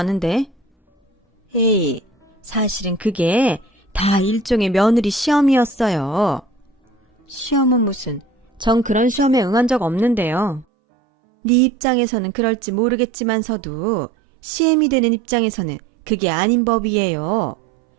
에이, 사실은 그게 다 일종의 며느리 시험이었어요. 시험은 무슨, 전 그런 시험에 응한 적 없는데요. 네 입장에서는 그럴지 모르겠지만서도 시엠이 되는 입장에서는 그게 아닌 법이에요.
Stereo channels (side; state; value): left; drops out; at 10.7 s